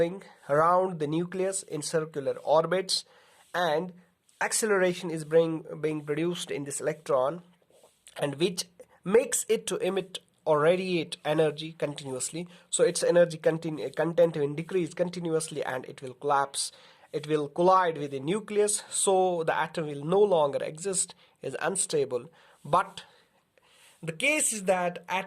around the nucleus in circular orbits and acceleration is being produced in this electron, and which makes it to emit or radiate energy continuously, so its energy content will decrease continuously and it will collapse. It will collide with the nucleus, so the atom will no longer exist, is unstable. But the case is that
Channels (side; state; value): both; identical; correlation 1.00